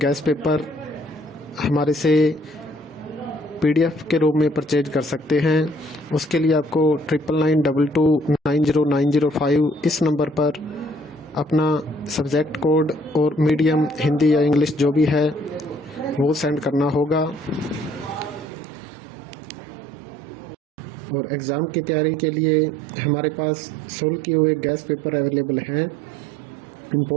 पेपर हमारे से PDF के रूप में परचेज कर सकते हैं। उसके लिए आपको 9992290905 इस नंबर पर अपना सब्जेक्ट कोड और मीडियम हिंदी या इंग्लिश जो भी है वो सेंड करना होगा। और एग्ज़ाम की तैयारी के लिए हमारे पास सोल्व किए हुए गैस पेपर अवेलेबल हैं।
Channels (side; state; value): left; drops out; at 18.4 s